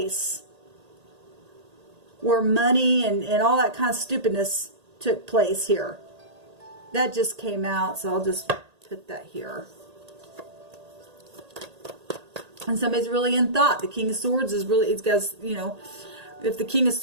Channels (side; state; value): left; late; 1.8 ms